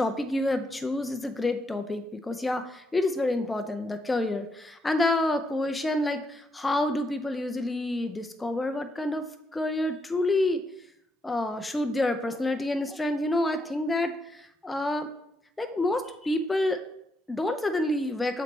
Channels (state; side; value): normal; both; correlation 0.79